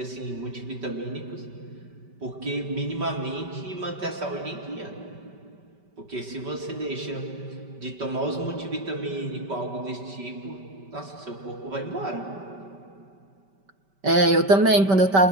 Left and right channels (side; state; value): left; late; 5.2 ms